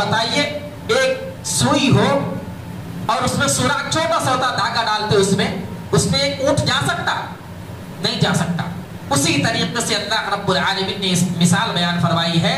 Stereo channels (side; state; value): both; identical; correlation 1.00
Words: ایک سوئی ہو اور اس میں سوراخ چھوٹا سا ہوتا، دھاگا ڈالتے اس میں ایک اونٹ جا سکتا؟ نہیں جا سکتا. اسی طریقے سے اللہ رب العالمین نے اس مثال بیان فرمائی ہے